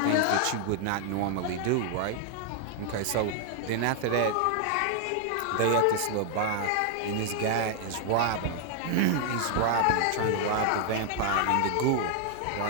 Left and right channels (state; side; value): different; both; correlation 0.00